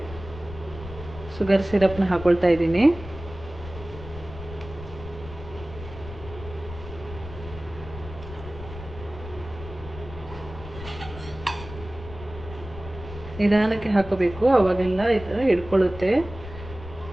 ಶುಗರ್ ಸಿರಪ್ನ ಹಾಕ್ಕೊಳ್ತಾ ಇದ್ದೀನಿ. ನಿಧಾನಕ್ಕೆ ಹಾಕೋಬೇಕು, ಅವಾಗೆಲ್ಲ ಈ ಥರ ಹಿಡ್ಕೊಳ್ಳುತ್ತೆ.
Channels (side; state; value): left; noise; rumble, 13 dB below the sound